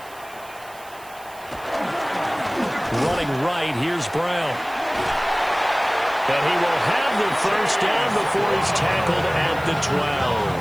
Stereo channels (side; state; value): right; noise; hiss, 22 dB below the sound